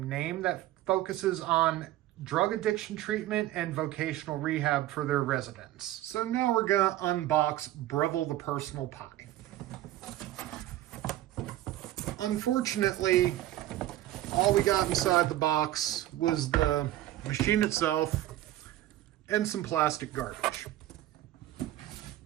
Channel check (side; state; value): left; quieter; 14.6 dB